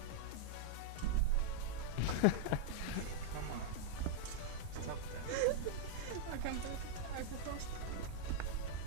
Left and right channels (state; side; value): different; both; correlation -0.01